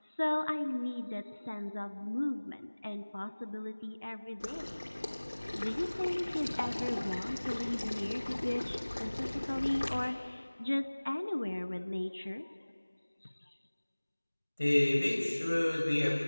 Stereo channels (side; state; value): both; inverted; correlation -1.00